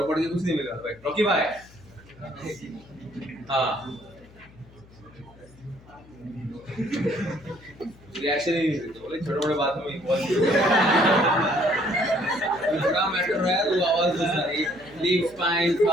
पढ़ के कुछ नहीं मिला भाई. रॉकी भाई, हाँ, रिएक्शन ही नहीं देते. बोले छोटे मोटे बात में इन्वॉल्व बड़ा मैटर है तो आवाज दे सारी लीफ स्पाइन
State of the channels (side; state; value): left; noise; hum, 24 dB below the sound